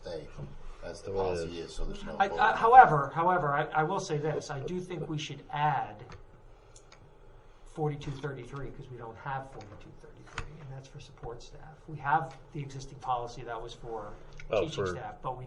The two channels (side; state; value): both; identical; correlation 1.00